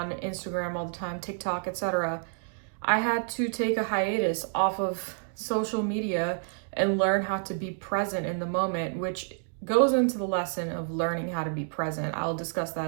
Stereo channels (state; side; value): silent; left; digital silence